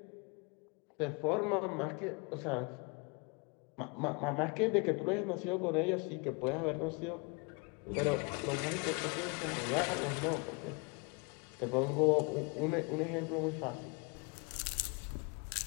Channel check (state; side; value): quieter; right; 31.7 dB